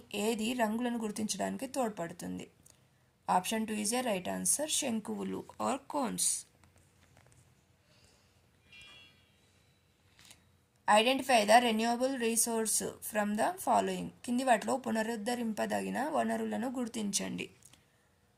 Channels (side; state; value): both; identical; correlation 1.00